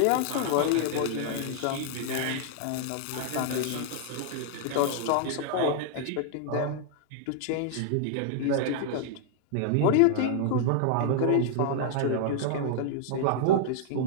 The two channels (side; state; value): both; different; correlation -0.01